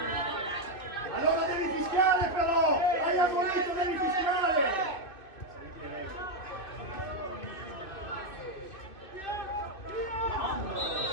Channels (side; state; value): right; late; 2.5 ms